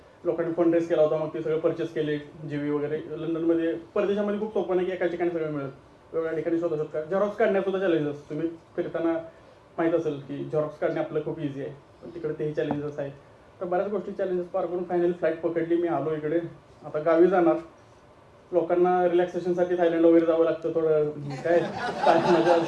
लोकांनी फंड रेस केला होता, मग ते सगळं परचेस केले. जीवी वगैरे लंडनमध्ये, परदेशामध्ये खूप सोपं नाही की एका ठिकाणी सगळं मिळत, वेगवेगळ्या ठिकाणी शोधू शकता. झेरॉक्स काढण्यात सुद्धा चॅलेंजेस, तुम्ही फिरताना माहीत असेल की झेरॉक्स काढणे आपलं खूप इझी आहे, पण तिकडे तेही चॅलेंजेस आहेत. तर बऱ्याच गोष्टी चॅलेंजेस पार करून फायनली फ्लाईट पकडली. मी आलो इकडे, आता गावी जाणार. लोकांना रिलॅक्सेशनसाठी थायलंड वगैरे जावं लागतं, थोडं काय मजा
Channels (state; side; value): identical; both; correlation 1.00